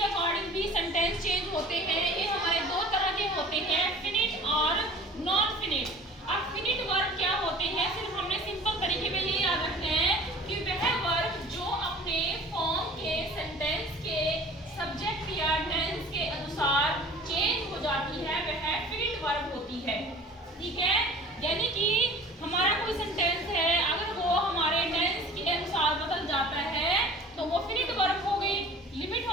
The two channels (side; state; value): both; normal; correlation 0.45